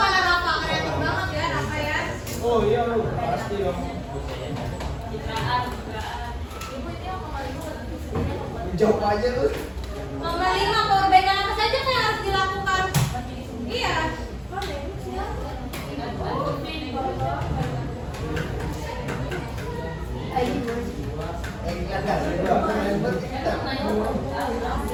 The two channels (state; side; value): identical; both; correlation 1.00